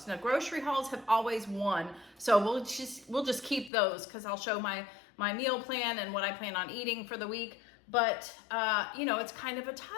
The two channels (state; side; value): drops out; right; at 3.7 s